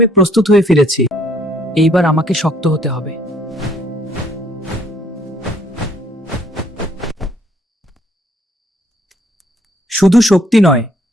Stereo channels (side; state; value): both; normal; correlation 0.64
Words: প্রস্তুত হয়ে ফিরেছি। এইবার আমাকে শক্ত হতে হবে। শুধু শক্তি নয়,